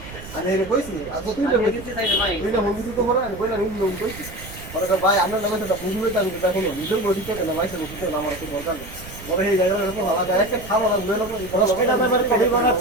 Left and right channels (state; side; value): noise; right; rumble, 15 dB below the sound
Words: আর এই কইছি আচ্ছা তুই আমি দিতে চাই ভাই তুই না মুভি তো পড়া আমি কইলা নি লোক কইছি পরে ভাই আমরা নামে তো বুঝবে তো আমি দেখো না নিজের বডি তো না ভাই সে মুখে না আমার তো দরকার নেই পরে এই জায়গাটা তো ভালো যায় একটা খাওয়া না লয়ে লোক 10 টাকা দামের কফি